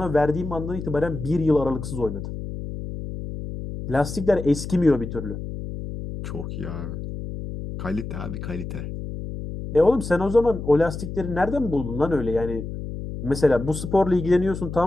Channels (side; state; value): left; noise; hum, 8 dB below the sound